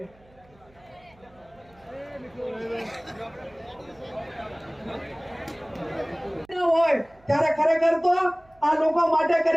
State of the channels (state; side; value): noise; right; hum, 29 dB below the sound